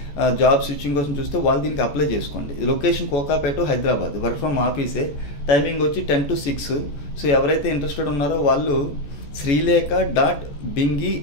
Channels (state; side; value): late; right; 14 ms